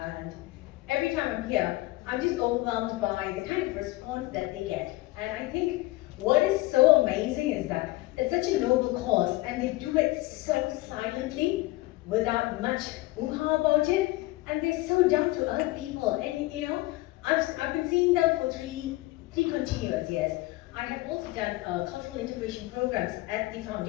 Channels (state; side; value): quieter; right; 19.7 dB